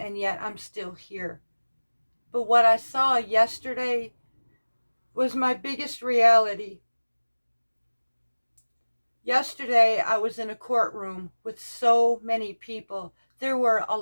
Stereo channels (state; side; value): inverted; both; correlation -1.00